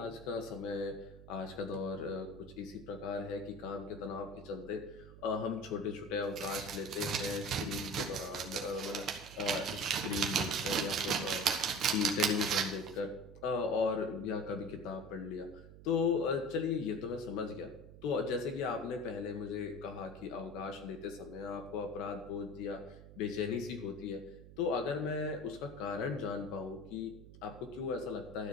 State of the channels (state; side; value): noise; right; hum, 16 dB below the sound